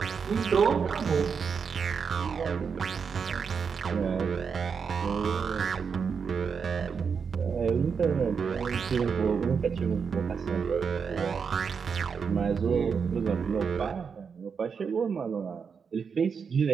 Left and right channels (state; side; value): quieter; left; 6.1 dB